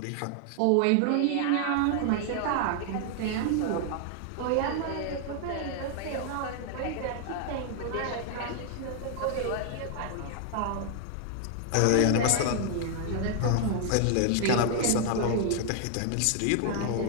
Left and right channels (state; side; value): different; both; correlation 0.00